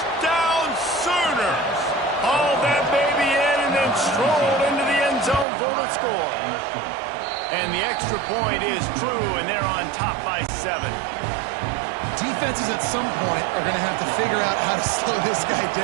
Sooners! Hauled that baby in and then strolled into the end zone for the score. And the extra point is true, and they're on top by 7. Defenses at some point are going to have to figure out how to slow this guy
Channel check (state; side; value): drops out; left; at 5.5 s